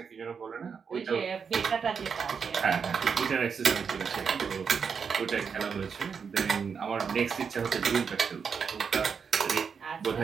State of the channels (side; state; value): left; quieter; 6.2 dB